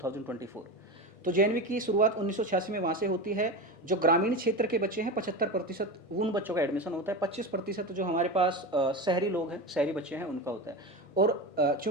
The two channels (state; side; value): late; right; 1.6 ms